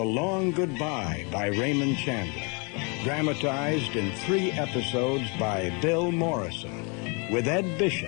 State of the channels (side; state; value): right; quieter; 33.1 dB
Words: Long Goodbye by Raymond Chandler, dramatized in 3 episodes by Bill Morrison, with Ed